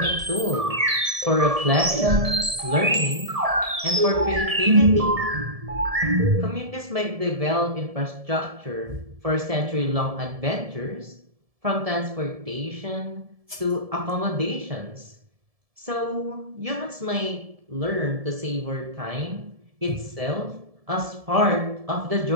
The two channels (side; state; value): left; late; 1.7 ms